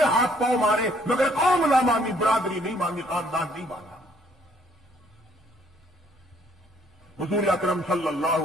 ہاتھ پاؤں مارے، مگر قوم نہ مانی، برادری نہیں مانی، خاندان نہیں مانا۔ حضور اکرم صلی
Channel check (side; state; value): both; normal; correlation 0.64